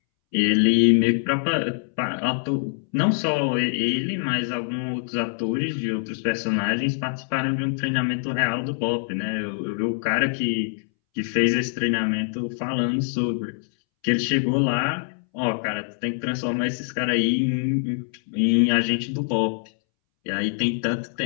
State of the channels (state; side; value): silent; right; 62 dB below the other